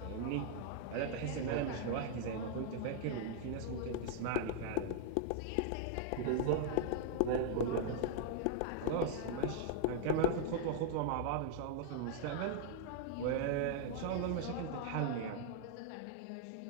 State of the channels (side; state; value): both; different; correlation -0.01